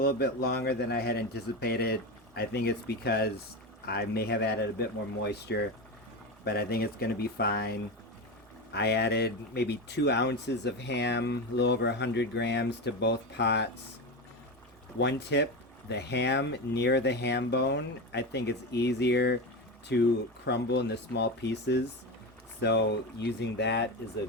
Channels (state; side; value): normal; both; correlation 0.19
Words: bit longer than I had anticipated. I think it's because I may have added a bit more moisture, but I think it's going to be fine. I added maybe 2 ounces of ham, a little over 100 grams to both pots. One tip, the ham near the ham bone, I think it's easier to crumble into small pieces, so using that is a